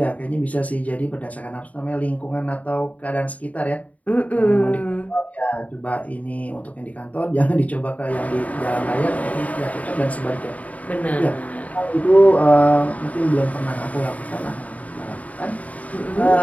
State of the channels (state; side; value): late; right; 0.070 ms